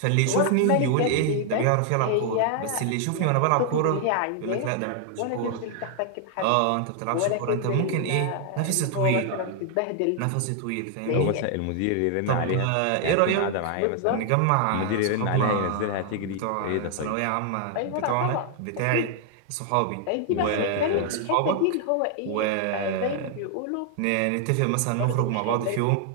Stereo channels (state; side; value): different; both; correlation 0.00